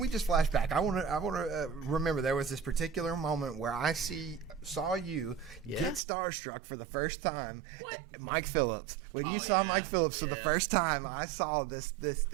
just flash back? I want to remember there was this particular moment where I saw you get starstruck for the first time. What? Mike Phillips. When you saw Mike Phillips for the first time, I saw this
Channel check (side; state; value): left; drops out; at 6.0 s